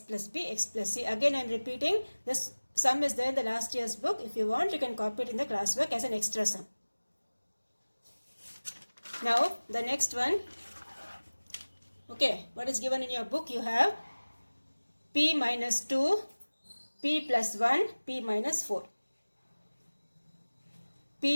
plus B, x plus C. Again I am repeating, this sum is there in the last year's book. If you want, you can copy it in the classwork as an extra sum. Now the next one. Okay, what is given in your book? You have p minus 2, p plus 1, p minus 4.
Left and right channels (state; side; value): inverted; both; correlation -1.00